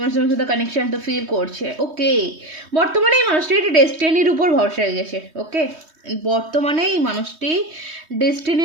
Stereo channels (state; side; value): late; left; 3.2 ms